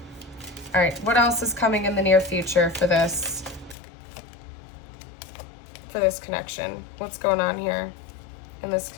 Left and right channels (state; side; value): drops out; right; at 3.8 s